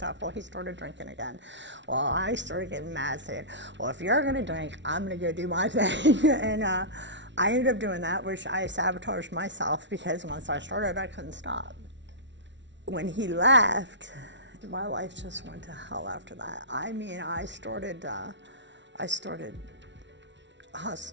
Well, he started drinking again. Well, I started getting mad, saying, well, if you're going to drink, I'm going to go do my thing. And I ended up doing that, which I sabotaged myself because once I started, I couldn't stop. When he left, my life just went to hell after that. I mean, I started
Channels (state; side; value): late; left; 0.52 ms